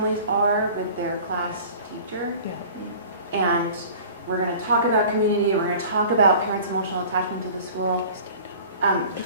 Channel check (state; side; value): inverted; both; correlation -0.44